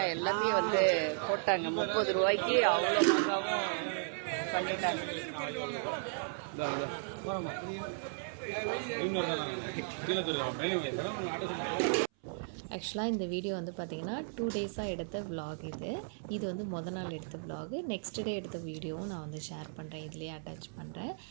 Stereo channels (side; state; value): left; silent; 54 dB below the other